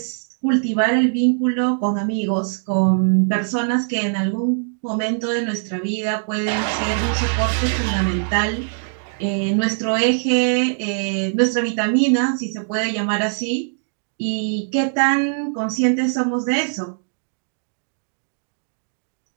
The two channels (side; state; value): left; silent; digital silence